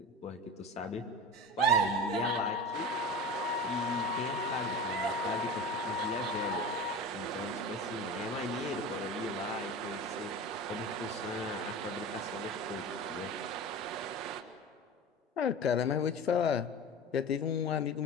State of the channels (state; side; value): normal; both; correlation 0.31